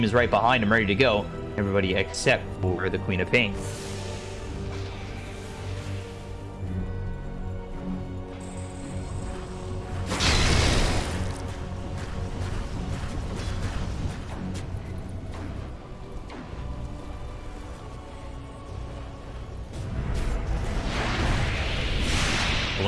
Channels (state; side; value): identical; both; correlation 1.00